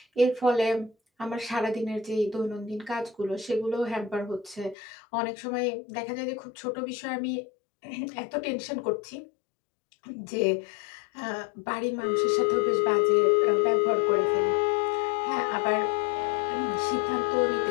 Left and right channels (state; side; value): drops out; right; at 4.8 s